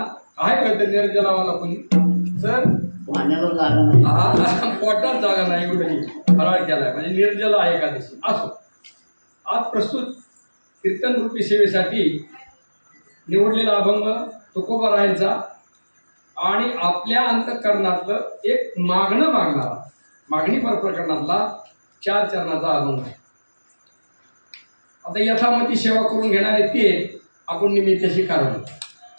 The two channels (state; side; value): inverted; both; correlation -1.00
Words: का ते निर्जलावाला कोणी सर पोटात जागा नाही कुठेही फराळ केलाय म्हणजे निर्जला एकादशी असो आज प्रस्तुत कीर्तन रूपी सेवेसाठी निवडलेला अभंग तुकोबारायांचा आणि आपल्या अंतःकरणातलं एक मागणी प्रकरणातला 4 चरणाचा अभंग आहे. आता यथामती सेवा करून घेणारे ते आपण निमित्ताशी कारण